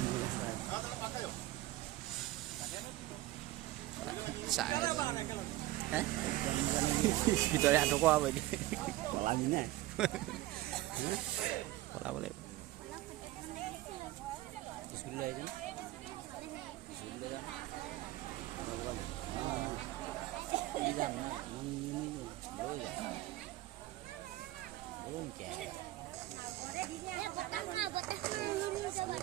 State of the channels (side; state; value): left; quieter; 16.7 dB